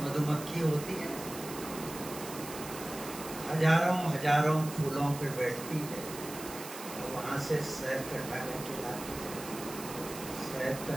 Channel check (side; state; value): right; noise; hiss, 11 dB below the sound